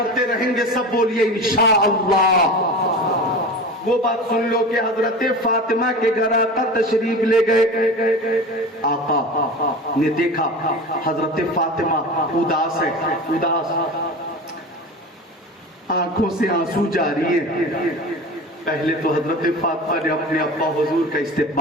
رہیں گے سب، بولیے انشاءاللہ۔ وہ بات سن لو کہ حضرت فاطمہ کے گھر آقا تشریف لے گئے، آقا نے دیکھا حضرت فاطمہ اداس ہے، اداس، آنکھوں سے آنسو جاری ہے۔ پہلے تو حضرت فاطمہ نے اپنے ابا حضور کا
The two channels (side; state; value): both; normal; correlation 0.32